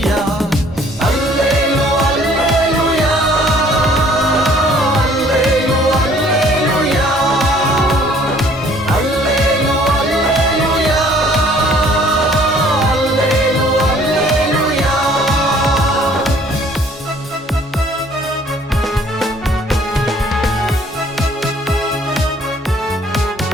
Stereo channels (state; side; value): normal; both; correlation 0.57